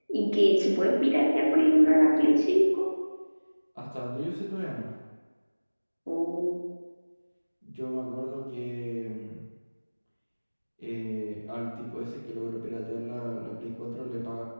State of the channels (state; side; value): inverted; both; correlation -1.00